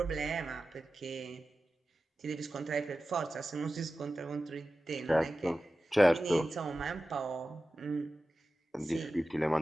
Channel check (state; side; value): normal; both; correlation 0.94